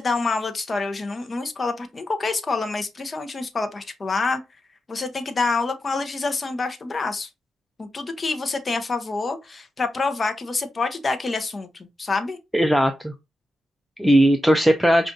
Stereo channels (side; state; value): both; normal; correlation 0.90